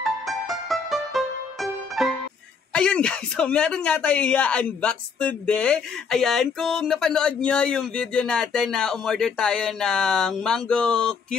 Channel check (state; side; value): quieter; right; 5.7 dB